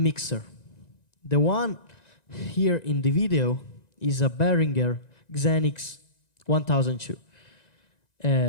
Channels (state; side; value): late; right; 1.9 ms